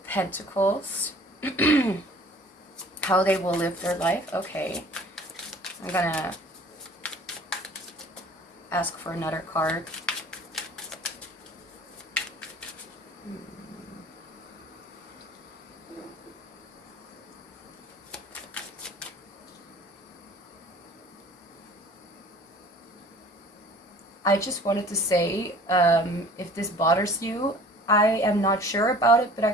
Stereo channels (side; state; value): both; normal; correlation 0.48